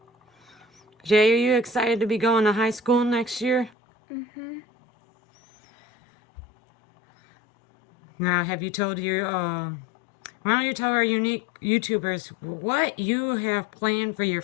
Jay, are you excited to be going to high school next year? Now, have you told why don't you tell our unique YouTubers what you have planned for your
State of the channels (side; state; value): right; drops out; at 3.7 s